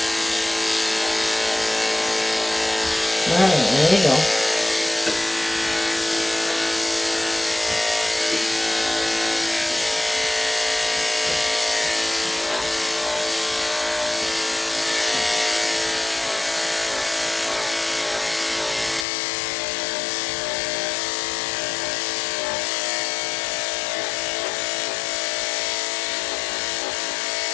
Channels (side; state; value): right; drops out; at 19.1 s